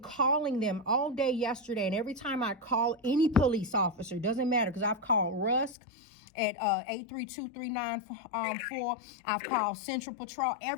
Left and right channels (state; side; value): drops out; right; at 5.8 s